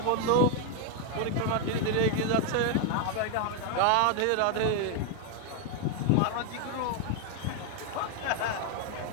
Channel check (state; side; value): different; both; correlation 0.01